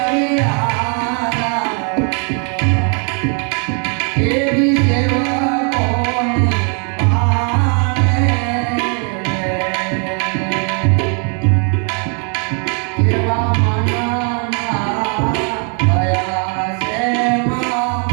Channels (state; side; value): quieter; left; 39.5 dB